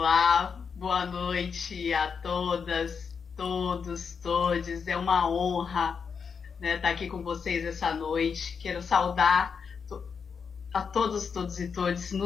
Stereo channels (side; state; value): right; quieter; 6.1 dB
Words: boa noite a todas, todos, todes. É uma honra, né, estar aqui com vocês essa noite. Quero saudar a todos e todes no